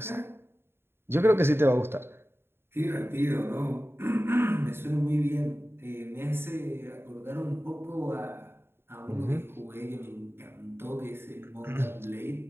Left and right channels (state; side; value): late; left; 0.11 ms